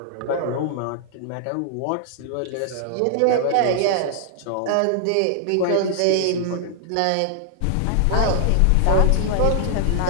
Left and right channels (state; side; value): different; both; correlation 0.00